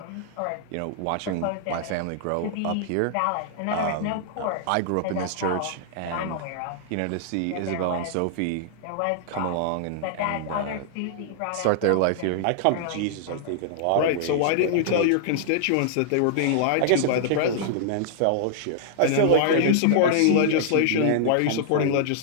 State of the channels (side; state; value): both; different; correlation -0.01